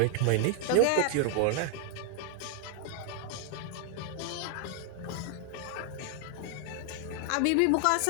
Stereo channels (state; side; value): different; both; correlation 0.00